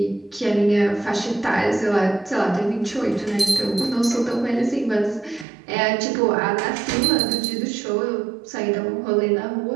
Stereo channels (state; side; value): drops out; left; at 5.5 s